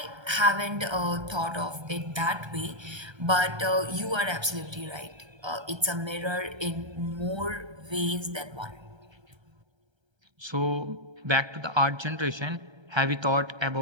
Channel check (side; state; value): left; late; 1.3 ms